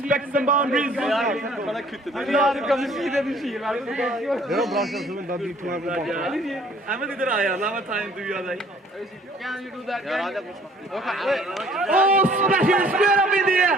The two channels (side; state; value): both; normal; correlation 0.57